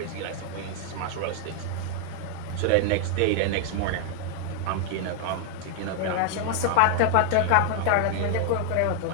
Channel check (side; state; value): both; different; correlation 0.00